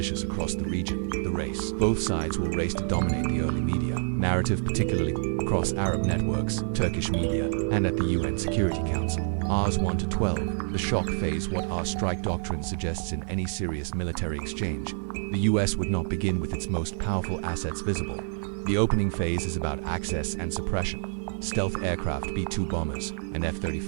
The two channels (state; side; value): silent; left; 60 dB below the other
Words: across the region, the race. Both sides will race to dominate the early media narrative, particularly across Arab networks, Turkish media, and at the UN Security Council. Rs 1 to 12, the shock phase. What our strike doctrine suggests in any serious military exchange, the US would not begin with its most powerful assets visible. The opening phase is about access and suppression. Stealth aircraft, B-2 bombers, and